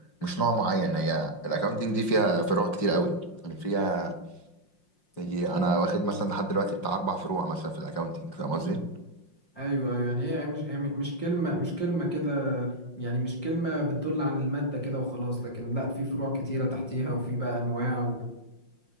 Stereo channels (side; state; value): right; late; 5.6 ms